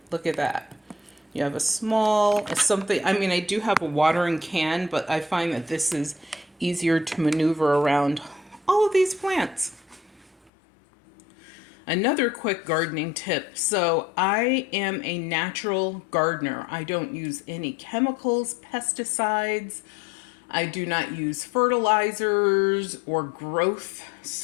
look at that. You have a small, something, I mean, I do have a watering can, but I find that this is easier to maneuver around all of these plants. Another quick gardening tip. So I am a natural gardener. I don't use any chemicals, pesticides. I do not use fertilizers or growth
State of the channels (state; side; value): drops out; right; at 10.5 s